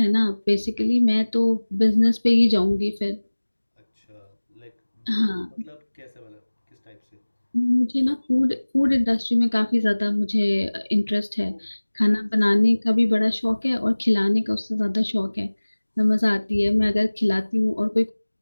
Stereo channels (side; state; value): both; inverted; correlation -1.00